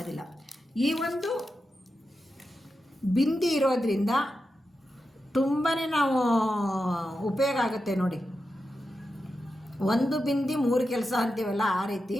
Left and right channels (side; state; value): both; normal; correlation 0.90